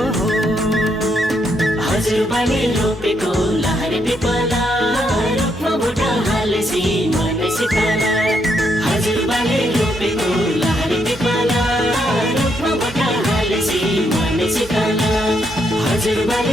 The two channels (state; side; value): normal; both; correlation 0.76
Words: हजुरबाले रोपेको लहरे पिपला रुखमा भोट हालेसी मन शीतल। हजुरबाले रोपेको लहरे पिपला रुखमा भोट हालेसी मन शीतल।